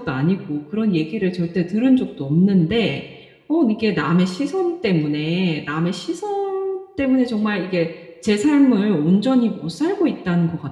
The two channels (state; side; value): identical; both; correlation 1.00